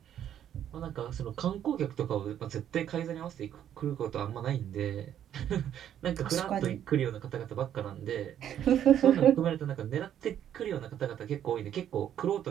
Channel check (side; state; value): left; quieter; 10.3 dB